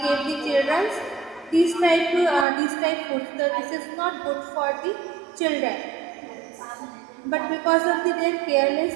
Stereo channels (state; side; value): drops out; left; at 2.5 s